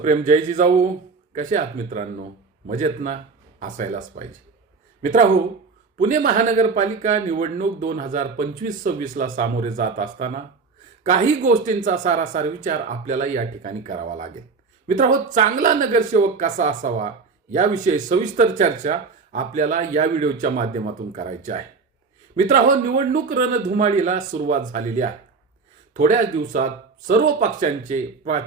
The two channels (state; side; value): quieter; left; 4.6 dB